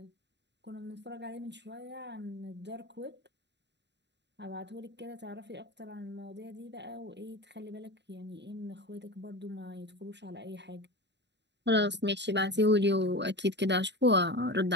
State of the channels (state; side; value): late; left; 0.51 ms